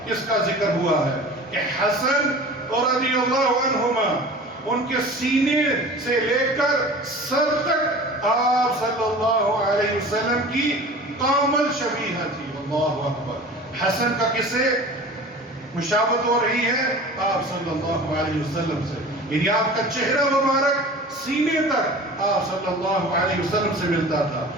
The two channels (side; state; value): both; normal; correlation 0.39